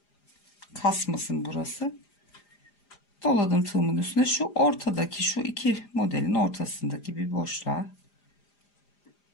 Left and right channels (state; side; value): late; right; 4.9 ms